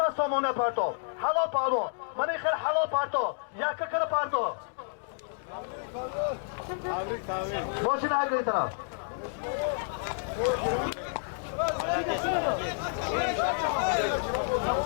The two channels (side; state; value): right; silent; digital silence